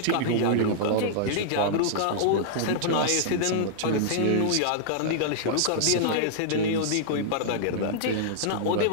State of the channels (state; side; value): different; both; correlation -0.02